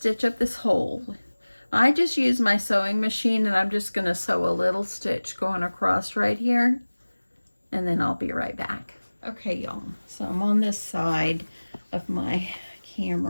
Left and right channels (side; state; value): both; inverted; correlation -1.00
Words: up this hole. I just use my sewing machine, and I'm just going to sew a little stitch going across right here, and then I'll be right back. Okay, y'all, so I'm on this side of my